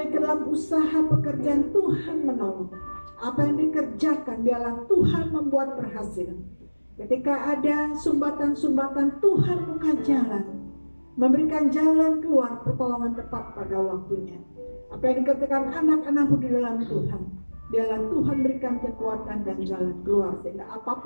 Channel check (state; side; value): inverted; both; correlation -1.00